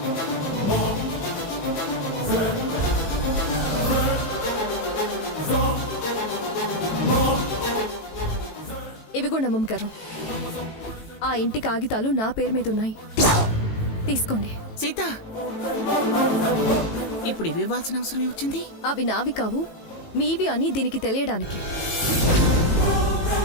ఇవిగోండి అమ్మమ్మ గారు, ఆ ఇంటి కాగితాలు నా పేరు మీద ఉన్నాయి. తీసుకోండి. సీత, ఇప్పుడు ఇవి ఇవ్వాల్సిన అవసరం ఏమొచ్చింది? అవి నావి కావు, మీవి అని దీనికి తెలియడానికి.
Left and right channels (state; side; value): late; right; 18 ms